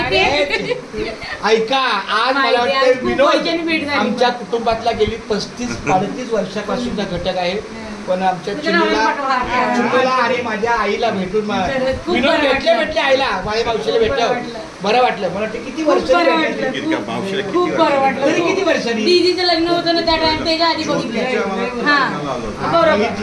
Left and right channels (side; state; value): both; identical; correlation 1.00